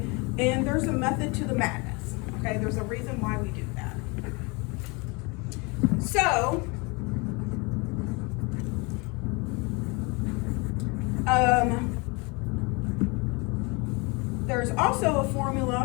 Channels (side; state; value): right; quieter; 28.8 dB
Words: And there's a method to the madness, okay? There's a reason why we do that. So, there's also a